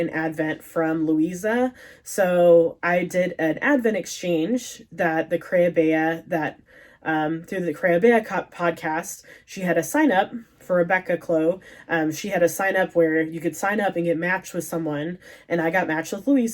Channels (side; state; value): both; identical; correlation 1.00